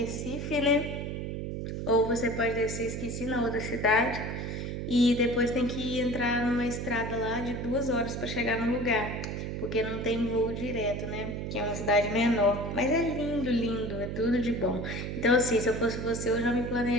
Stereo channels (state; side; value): noise; right; hum, 4 dB below the sound